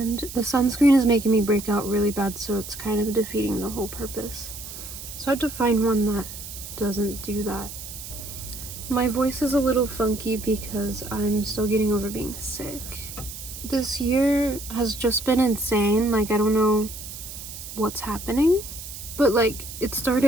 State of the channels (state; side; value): noise; right; hiss, 11 dB below the sound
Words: the sunscreen is making me break out really bad, so it's kind of defeating the whole purpose. So I have to find one that doesn't do that. My voice is a little funky because I'm still getting over being sick. This year has just been insane. Like, I don't know what's happening, but like, it